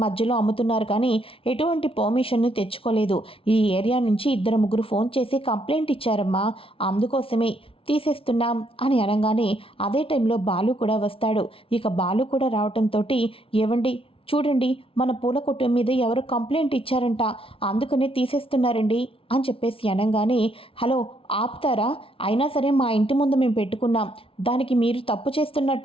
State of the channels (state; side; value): late; right; 0.26 ms